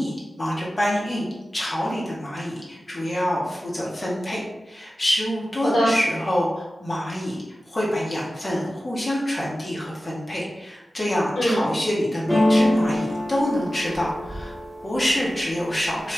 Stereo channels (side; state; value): both; normal; correlation 0.95